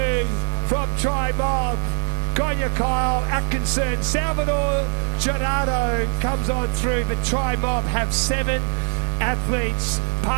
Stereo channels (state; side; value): silent; left; digital silence